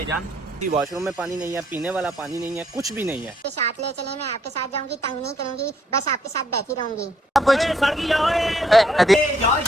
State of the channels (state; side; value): normal; both; correlation 0.69